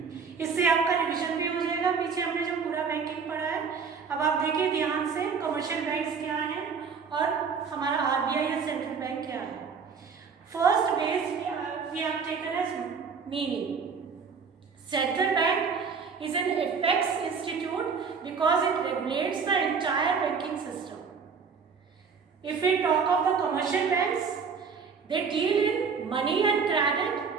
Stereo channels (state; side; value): quieter; left; 5.7 dB